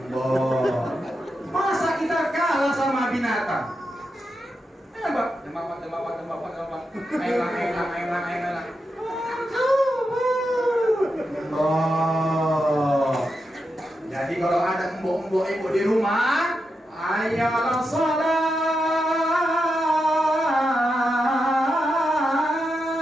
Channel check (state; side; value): normal; both; correlation 0.87